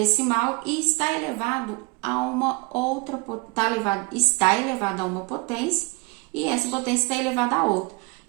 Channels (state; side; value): quieter; left; 27.4 dB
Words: e está elevado a uma outra, está elevado a uma potência e essa potência está elevada a outra.